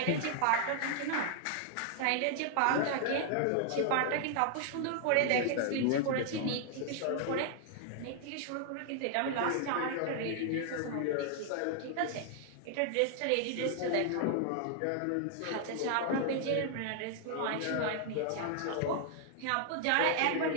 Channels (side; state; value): both; different; correlation 0.00